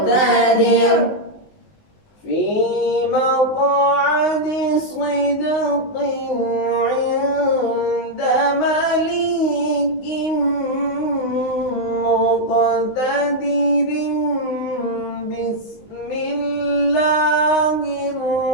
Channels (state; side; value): late; right; 19 ms